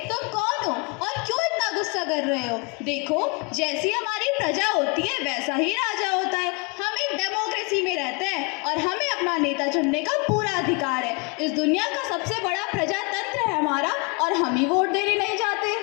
तुम कौन हो और क्यों इतना गुस्सा कर रहे हो? देखो, जैसी हमारी प्रजा होती है वैसा ही राजा होता है। हम एक डेमोक्रेसी में रहते हैं और हमें अपना नेता चुनने का पूरा अधिकार है। इस दुनिया का सबसे बड़ा प्रजातंत्र है हमारा और हम ही वोट देने नहीं जाते।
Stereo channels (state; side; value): quieter; right; 31.8 dB